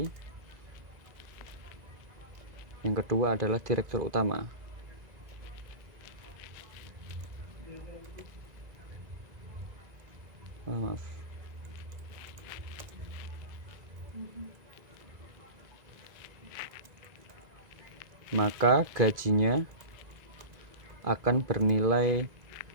Yang kedua adalah direktur utama. Maaf. Maka gajinya akan bernilai,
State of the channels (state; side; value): late; left; 1.9 ms